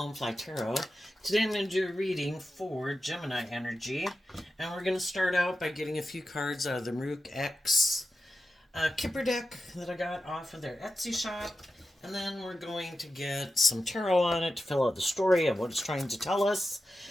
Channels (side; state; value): both; normal; correlation 0.91